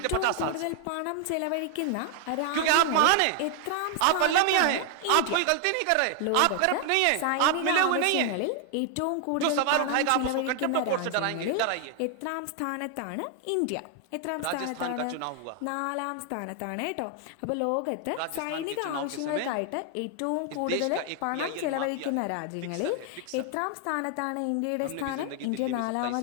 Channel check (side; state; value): both; different; correlation 0.00